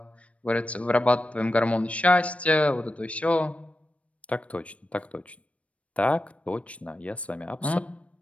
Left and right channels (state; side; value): late; right; 0.064 ms